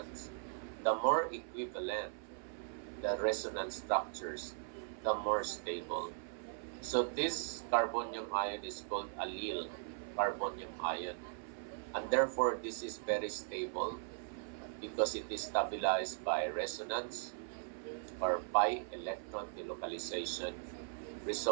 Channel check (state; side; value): silent; left; 52 dB below the other